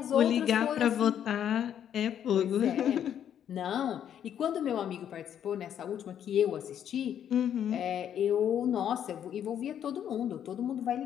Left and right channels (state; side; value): quieter; right; 9.5 dB